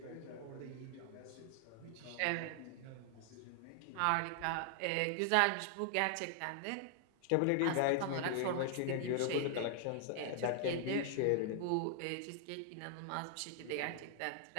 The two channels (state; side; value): different; both; correlation 0.00